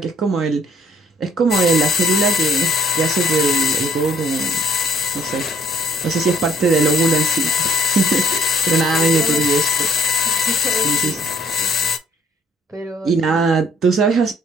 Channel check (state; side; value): normal; both; correlation 0.61